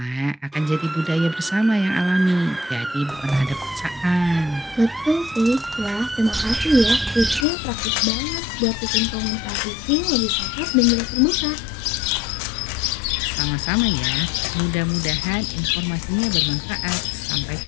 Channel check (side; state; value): right; drops out; at 7.5 s